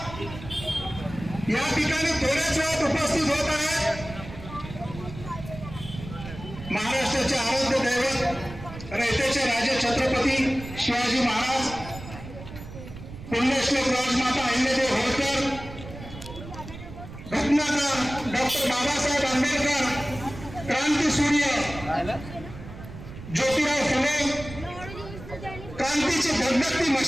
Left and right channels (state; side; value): noise; right; rumble, 13 dB below the sound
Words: या ठिकाणी थोड्याच वेळात उपस्थित होत आहेत. महाराष्ट्राचे आराध्य दैवत, रयतेचे राजे छत्रपती शिवाजी महाराज, पुण्यश्लोक राजमाता अहिल्यादेवी होळकर, घटनाकार डॉक्टर बाबासाहेब आंबेडकर, क्रांतीसूर्य ज्योतिराव फुले, क्रांतीची धगधगती